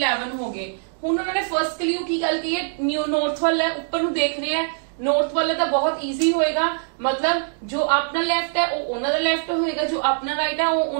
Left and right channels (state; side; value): silent; left; digital silence